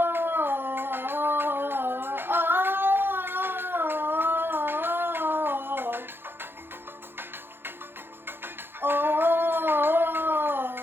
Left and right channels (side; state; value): left; late; 0.10 ms